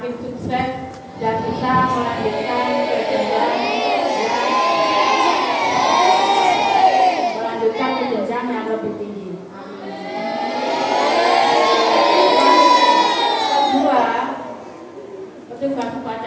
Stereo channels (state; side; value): identical; both; correlation 1.00